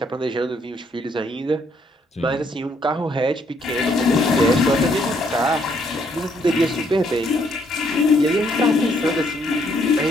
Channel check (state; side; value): normal; both; correlation 0.69